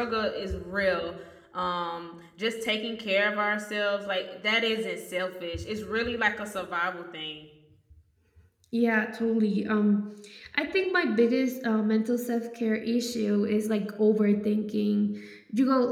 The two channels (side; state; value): both; identical; correlation 1.00